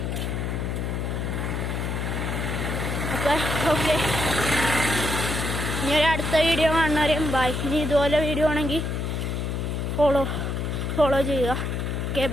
അപ്പം മക്കളെ. ഓക്കെ, ഇനി ഒരു അടുത്ത വീഡിയോ കാണുന്നവരെയും ബൈ. ഇനി ഇതുപോലെ വീഡിയോ ആണെങ്കിൽ ഫോളോ ചെയ്യുക. Okay,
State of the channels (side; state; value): left; noise; hum, 2 dB below the sound